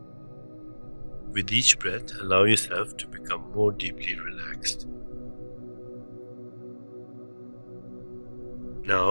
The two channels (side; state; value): both; inverted; correlation -1.00